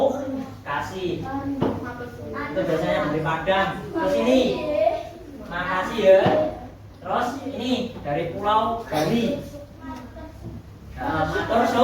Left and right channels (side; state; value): both; identical; correlation 1.00